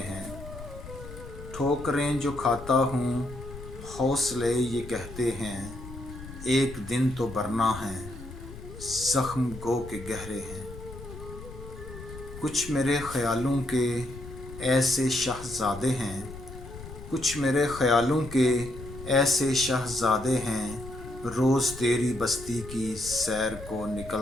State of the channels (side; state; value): left; noise; rumble, 13 dB below the sound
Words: ठोकरें जो खाता हूँ हौसले ये कहते हैं, एक दिन तो बरना है ज़ख्म गो के गहरे हैं। कुछ मेरे ख़यालों के ऐसे शहज़ादे हैं, कुछ मेरे ख़यालों के ऐसे शहज़ादे हैं, रोज़ तेरी बस्ती की सैर को